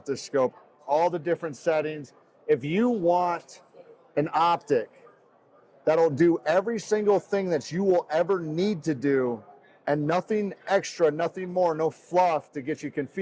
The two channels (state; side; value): identical; both; correlation 1.00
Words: this scope, all the different settings. If you want an optic that'll do every single thing that you will ever need to do and nothing extra, nothing more, no fluff to get you